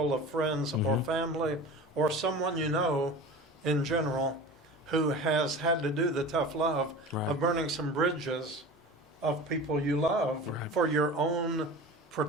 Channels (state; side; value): normal; both; correlation 0.35